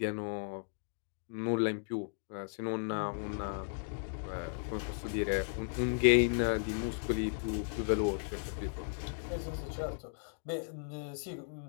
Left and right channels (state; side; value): silent; right; digital silence